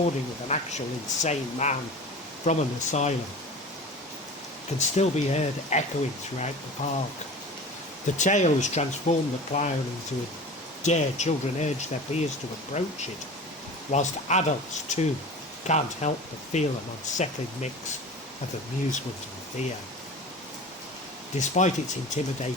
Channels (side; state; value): both; normal; correlation 0.36